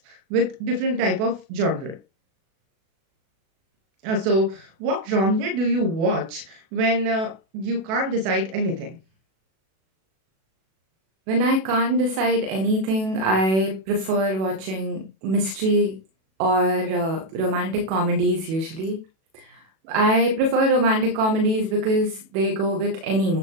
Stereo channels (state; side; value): late; left; 37 ms